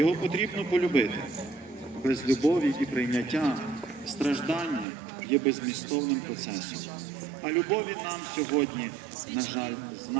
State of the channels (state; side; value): drops out; left; at 4.9 s